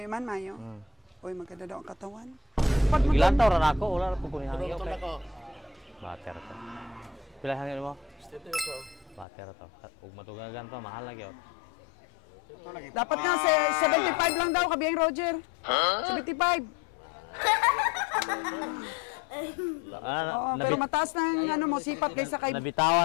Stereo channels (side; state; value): right; drops out; at 9.2 s